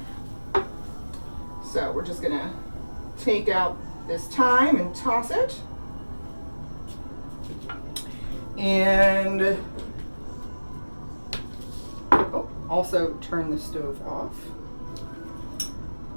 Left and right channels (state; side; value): inverted; both; correlation -1.00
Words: So we're just gonna take out this thyme and toss it. And also turn the stove off.